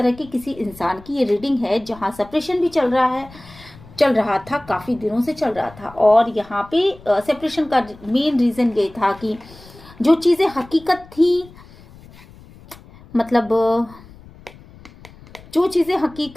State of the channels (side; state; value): left; noise; rumble, 22 dB below the sound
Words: की किसी इंसान की ये रीडिंग है जहां सेपरेशन भी चल रहा था, काफी दिनों से चल रहा था। और यहाँ पे सेपरेशन का मेन रीजन ये था कि जो चीजें हकीकत थी, मतलब जो चीजें